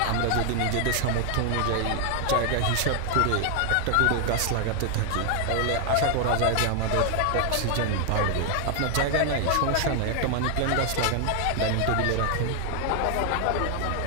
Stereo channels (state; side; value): different; both; correlation 0.00